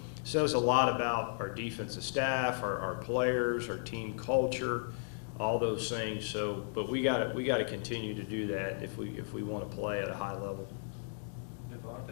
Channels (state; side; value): silent; right; digital silence